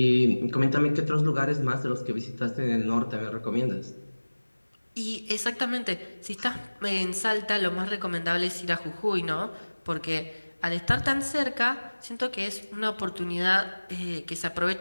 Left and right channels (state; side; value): inverted; both; correlation -1.00